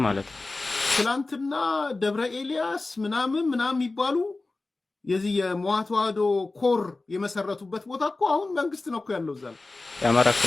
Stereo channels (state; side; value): quieter; right; 3.3 dB